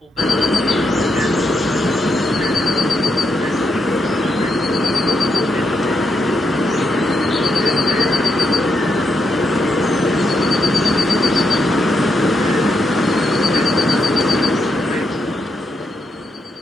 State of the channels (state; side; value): normal; both; correlation 0.81